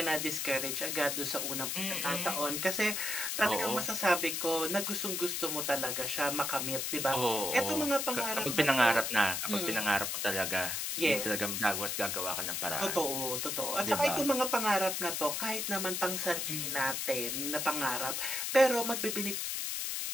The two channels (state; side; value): noise; left; hiss, 1 dB below the sound